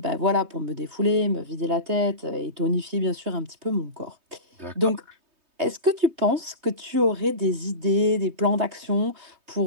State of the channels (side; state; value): left; late; 3.2 ms